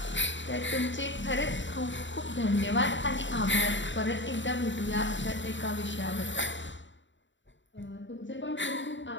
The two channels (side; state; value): right; late; 0.54 ms